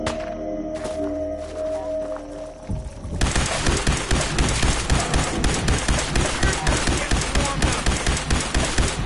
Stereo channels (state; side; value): identical; both; correlation 1.00